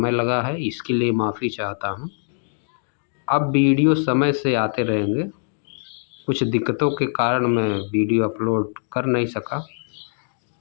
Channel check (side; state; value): right; silent; digital silence